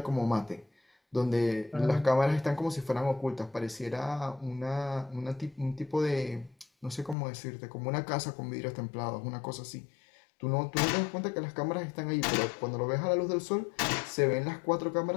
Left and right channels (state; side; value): drops out; right; at 7.2 s